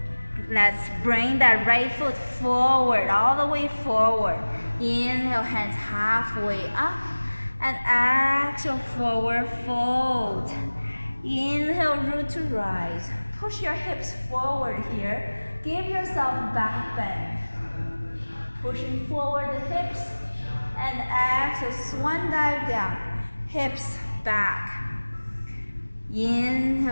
Let's bring that right foot forward, all the way forward. Inhale, hands halfway up. And exhale, forward fold. Inhale, root to rise. Push your hips forward here. Give yourself back bend. Pushing forward the hips. And exhale, swan dive down. Hips back.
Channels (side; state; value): both; inverted; correlation -1.00